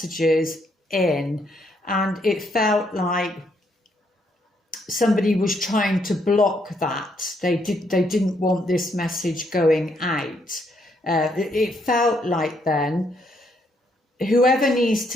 in, and it felt like somebody was trying to block that. They didn't want this message going out. It felt like then whoever needs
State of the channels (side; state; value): both; normal; correlation 0.73